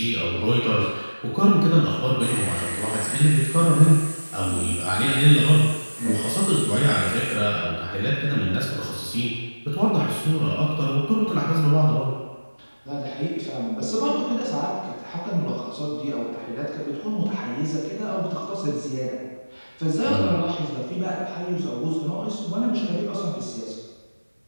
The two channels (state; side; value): inverted; both; correlation -1.00